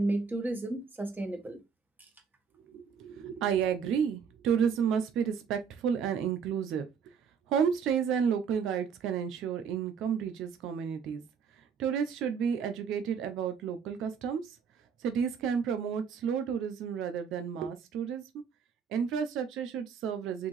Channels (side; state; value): left; quieter; 6.7 dB